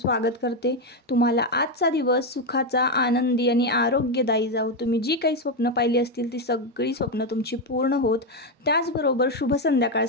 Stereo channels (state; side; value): normal; both; correlation 0.07